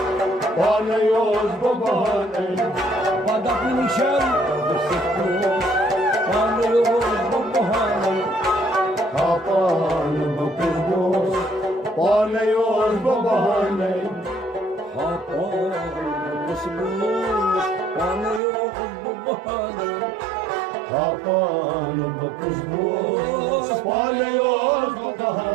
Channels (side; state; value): left; drops out; at 18.4 s